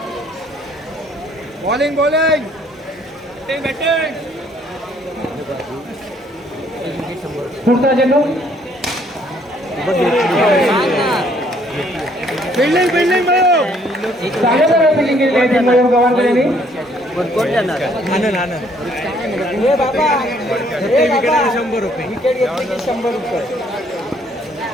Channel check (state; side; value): normal; both; correlation 0.64